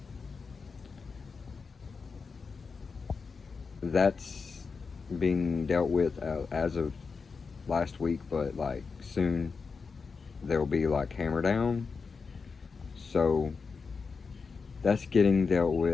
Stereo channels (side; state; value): right; quieter; 5.0 dB